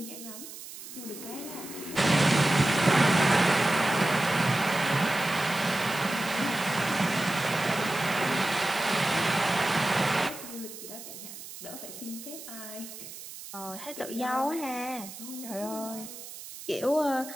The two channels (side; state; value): right; noise; hiss, 13 dB below the sound